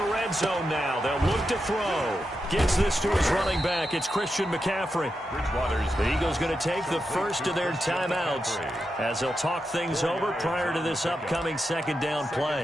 red zone now, they'll look to throw. Gets this to his running back. It's Christian McCaffrey. The Eagles going to take the first of their timeouts as they'll talk things over prior to this upcoming 2nd down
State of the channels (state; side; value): normal; both; correlation 0.87